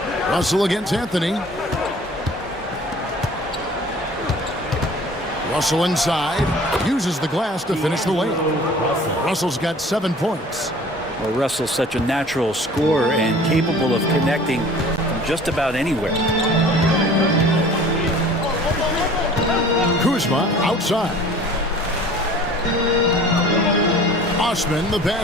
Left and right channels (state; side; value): normal; both; correlation 0.47